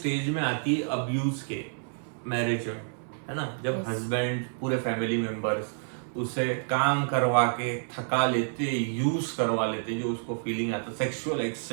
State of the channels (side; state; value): left; silent; 59 dB below the other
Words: में आती है अब्यूज के मैरिज में, है ना, जब Yes. हस्बैंड पूरे फैमिली मेंबर्स उसे काम करवा के थका लेते, यूज करवा लेते, जो उसको फीलिंग आता, सेक्सुअल